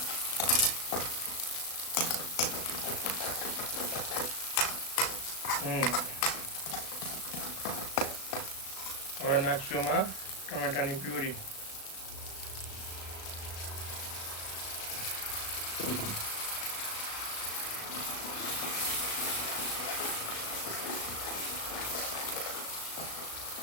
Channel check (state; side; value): late; right; 36 ms